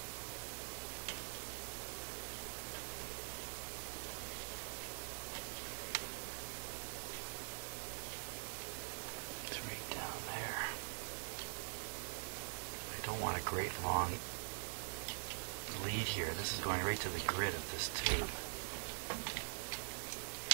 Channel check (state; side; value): silent; left; digital silence